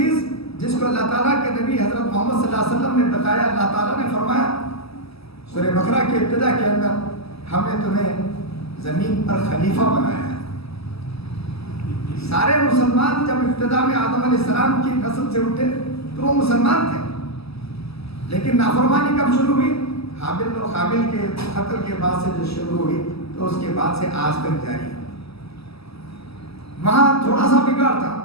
جس کو اللہ تعالیٰ کے نبی حضرت محمد صلی اللہ علیہ وسلم نے بتایا، اللہ تعالیٰ نے فرمایا سورہ بقرہ کے ابتدا کے اندر، ہم نے تمہیں زمین پر خلیفہ بنایا ہے۔ سارے مسلمان جب ابتدا میں آدم علیہ السلام کی نسل سے اٹھے تو وہ مسلمان تھے، لیکن نافرمانی کب شروع ہوئی؟ حابل و قابل کے قتل کے بعد سے جو شروع ہوئی تو اس کے بعد سے آج تک جاری ہے۔ وہاں تھوڑا سا بگاڑ تھا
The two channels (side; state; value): right; late; 0.78 ms